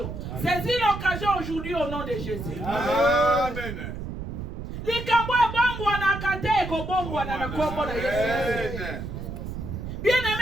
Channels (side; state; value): right; noise; rumble, 7 dB below the sound